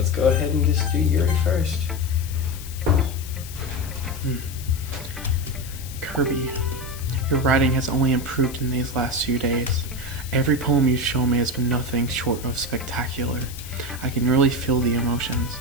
go ahead and just do Yuri first. Kirby, your writing has only improved in these last few days. Every poem you've shown me has been nothing short of spectacular. I can really feel the emotions.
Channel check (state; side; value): noise; left; hiss, 14 dB below the sound